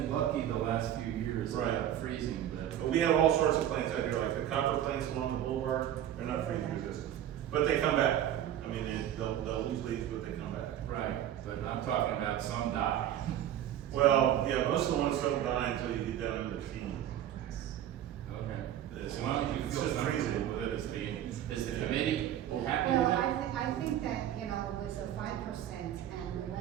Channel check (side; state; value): left; quieter; 11.2 dB